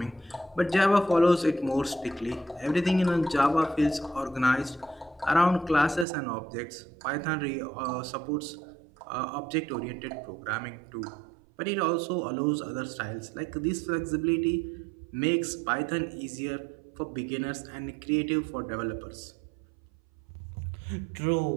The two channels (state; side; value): drops out; left; at 6.1 s